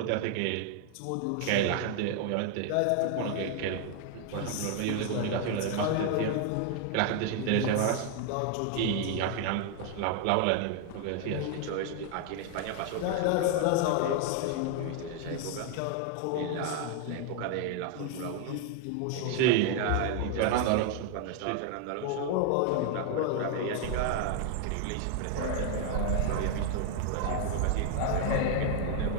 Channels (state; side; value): different; both; correlation 0.00